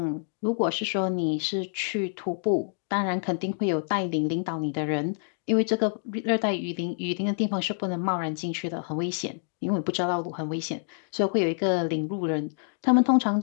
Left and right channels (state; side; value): silent; right; digital silence